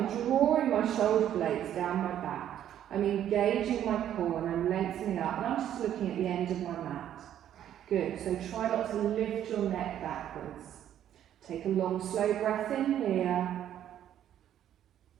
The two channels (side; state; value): left; quieter; 10.8 dB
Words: drawing my shoulder blades down my back. I'm engaging my core and I'm lengthening up. And I'm just looking at the end of my mat. Good, so try not to lift your neck backwards. Take a long, slow breath in here.